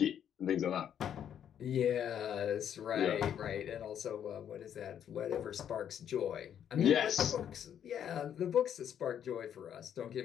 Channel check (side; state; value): right; quieter; 9.3 dB